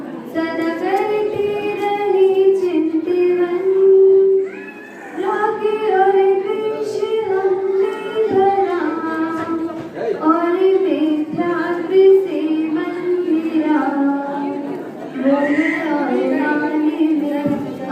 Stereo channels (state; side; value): identical; both; correlation 1.00